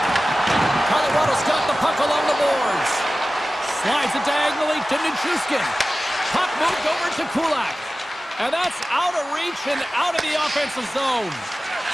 Colorado's got the puck along the boards. Slides it diagonally to Nichushkin. Puck moved over to Kulak. And that's out of reach and out of the offensive zone.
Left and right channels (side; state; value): both; normal; correlation 0.96